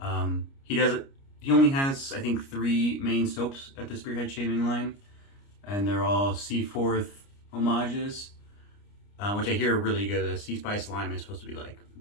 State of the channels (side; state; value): right; late; 29 ms